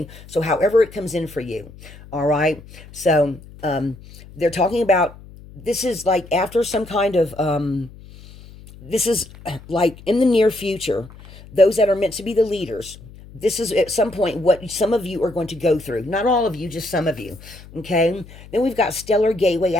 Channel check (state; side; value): noise; left; hum, 19 dB below the sound